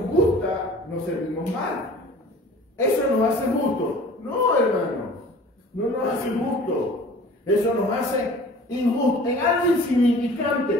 gusta, nos servimos mal. Eso nos hace justo. No, hermano, no nos hace justo. Eso nos hace injusto. En algo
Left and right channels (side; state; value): both; normal; correlation 0.46